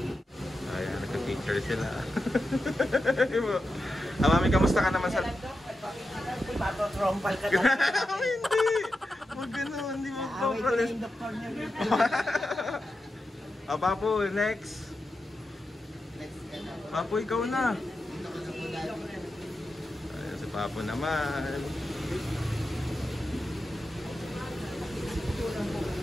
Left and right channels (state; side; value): normal; both; correlation 0.89